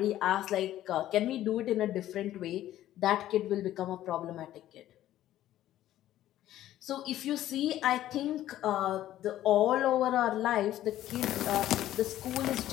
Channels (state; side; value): quieter; right; 13.2 dB